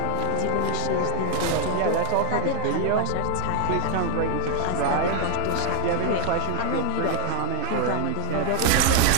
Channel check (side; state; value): both; different; correlation 0.01